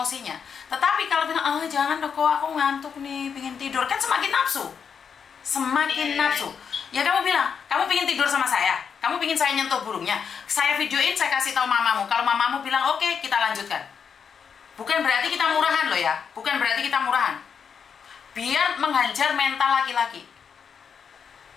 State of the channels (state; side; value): quieter; right; 6.8 dB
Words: Tetapi kalau bilang, jangan dong, aku ngantuk nih, pengen tidur, kan semakin nafsu. Ya kamu bilang, kamu pengen tidur sama saya, kamu pengen saya nyentuh burungnya, saya videoin, saya kasih tahu mamamu. Kalau mamamu bilang oke, kita lanjutkan. Bukan berarti kita murahan loh ya, biar menghajar mental laki-laki.